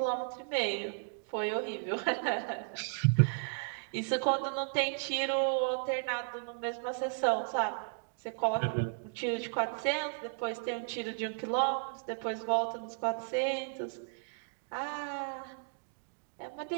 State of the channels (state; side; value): silent; left; digital silence